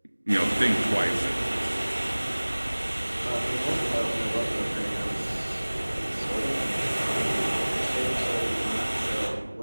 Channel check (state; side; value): inverted; both; correlation -1.00